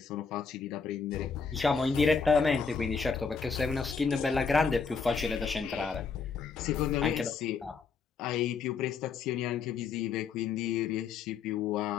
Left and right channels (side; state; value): right; quieter; 5.4 dB